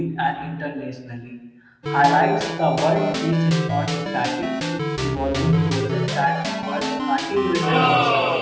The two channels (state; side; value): identical; both; correlation 1.00